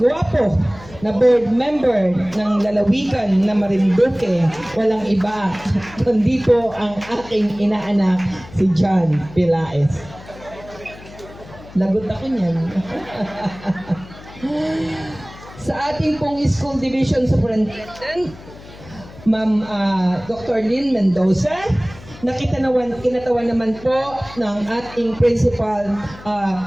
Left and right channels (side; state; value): left; noise; hum, 18 dB below the sound